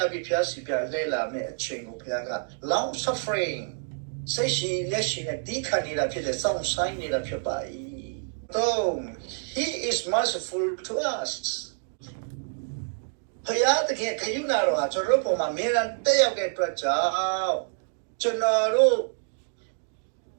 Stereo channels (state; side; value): silent; left; digital silence